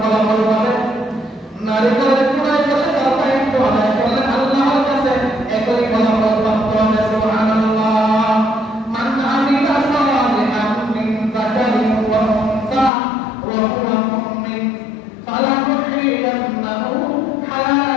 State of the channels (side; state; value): right; drops out; at 12.9 s